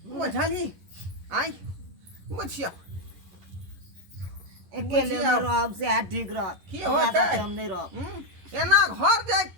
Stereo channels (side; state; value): left; late; 11 ms